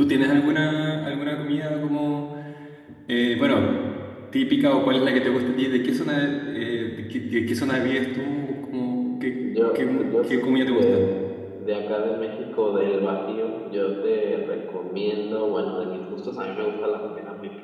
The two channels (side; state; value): both; identical; correlation 1.00